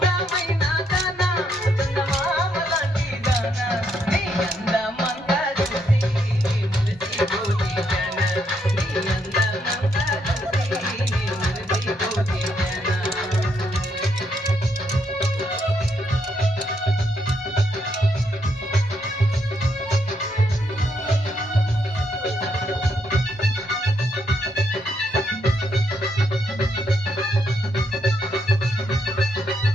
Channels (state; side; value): normal; both; correlation 0.76